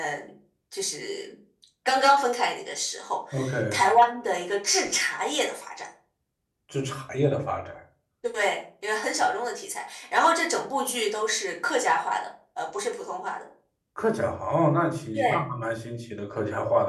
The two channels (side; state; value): both; identical; correlation 1.00